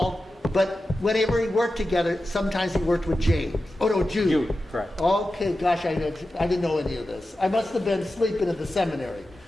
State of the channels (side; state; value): both; normal; correlation 0.92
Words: but whenever he worked together, sometimes he worked with James. Oh no, Jude. Jude, correct. Okay, gosh, I didn't know any of this. I must have been sleeping at the seminary.